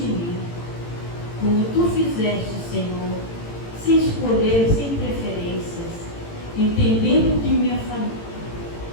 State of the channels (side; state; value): right; late; 18 ms